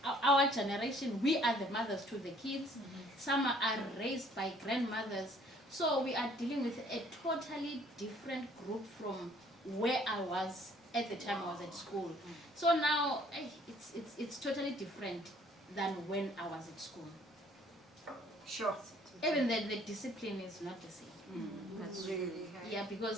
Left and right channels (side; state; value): both; normal; correlation 0.59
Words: our generation. We are the mothers to the kids. Some are raised by grandmothers. So we are dealing with a totally different group from where I was at the time I was at school. So now it's totally different than when I was at school. Sure. Even the discipline is not the same. That's really, yeah,